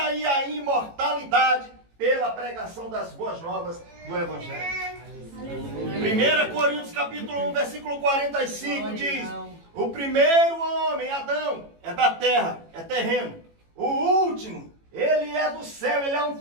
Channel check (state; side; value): late; left; 18 ms